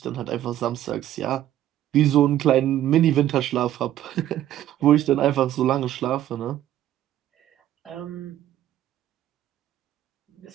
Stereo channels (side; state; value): left; quieter; 12.5 dB